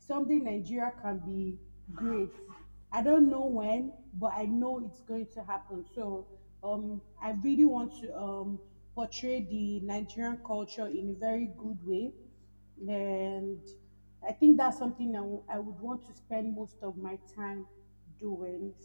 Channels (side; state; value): both; inverted; correlation -1.00